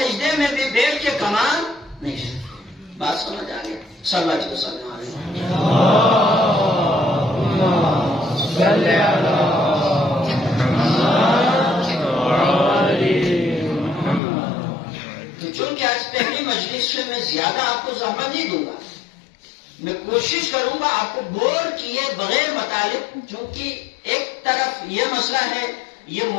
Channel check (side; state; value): right; drops out; at 14.2 s